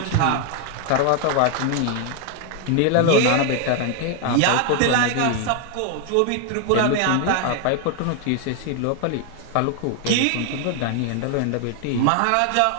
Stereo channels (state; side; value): different; both; correlation 0.01